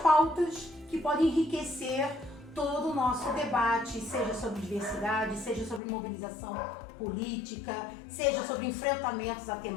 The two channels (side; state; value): right; drops out; at 5.8 s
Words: que podem enriquecer todo o nosso debate, seja sobre diversidade, seja sobre mobilização política, seja sobre enfrentamentos a